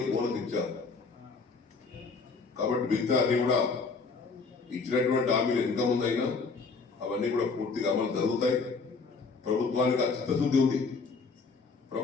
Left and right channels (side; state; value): right; quieter; 4.5 dB